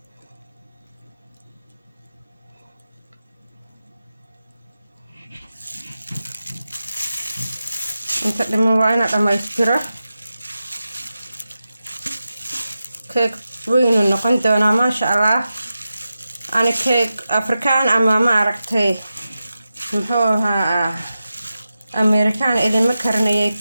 inta dhiman waa ina dhammaystiro. keeg weynu noqon doonaa maasha allah. ani keeg afrikaan ama ma aragtay muxuu ahaa amerikaan idinma karinayay.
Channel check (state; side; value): inverted; both; correlation -0.92